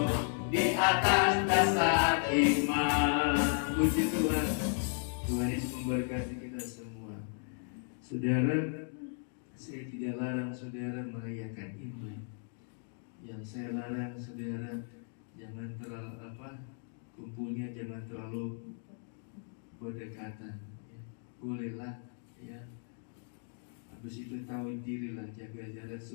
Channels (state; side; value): silent; right; 54 dB below the other